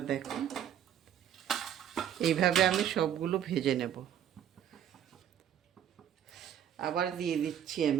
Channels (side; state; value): left; quieter; 9.8 dB